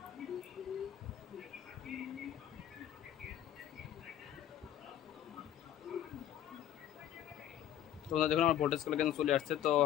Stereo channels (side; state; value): right; quieter; 11.1 dB